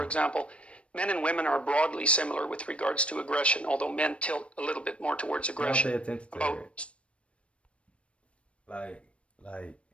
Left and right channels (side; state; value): right; late; 0.060 ms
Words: example, men and women are broadly similar with regards to aggression, although men tilt a little bit more towards aggression. Don't pay attention to her. Like,